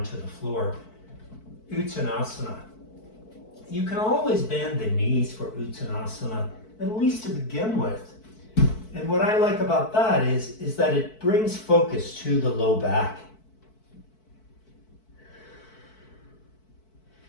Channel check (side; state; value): right; late; 4.6 ms